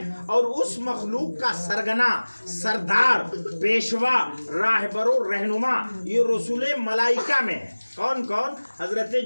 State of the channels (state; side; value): inverted; both; correlation -1.00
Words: اور اس مخلوق کا سرگنا، سردار، پیشوا، راہبر و رہنما یہ رسول ملائکہ میں ہے۔ کون کون؟ حضرت